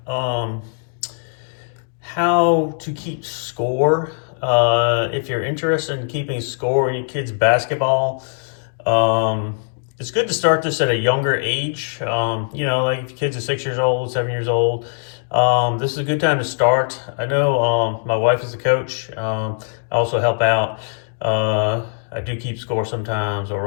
um, how to keep score. If you're interested in keeping score in your kids' basketball, it's good to start this at a younger age. Like if your kids are 6 years old, 7 years old, this is a good time to start. I know my wife is a coach. I also help out. I do keep score sometimes or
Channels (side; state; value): right; silent; digital silence